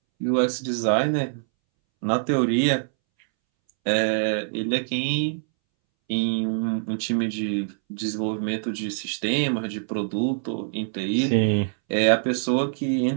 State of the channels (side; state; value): left; silent; 62 dB below the other